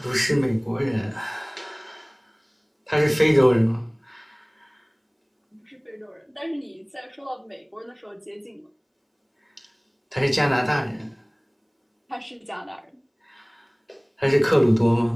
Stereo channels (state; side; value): identical; both; correlation 1.00